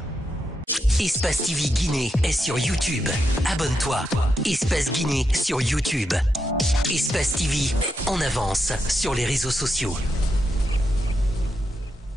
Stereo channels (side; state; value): both; normal; correlation 0.84